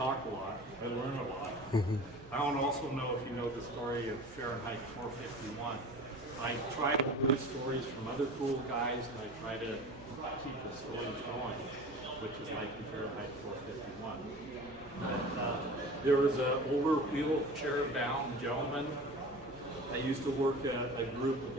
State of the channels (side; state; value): right; noise; hum, 21 dB below the sound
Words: a lot, I learn a lot. I don't also know if you know the story of Fahrenheit 451. I try to hear stories from other cool guys, and I try to keep the stories going, which is like Fahrenheit 451. There was an older wheelchair-bound gentleman. I used to work at a group with